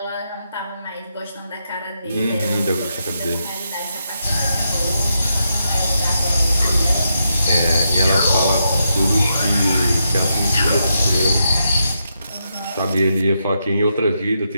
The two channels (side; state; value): both; inverted; correlation -0.82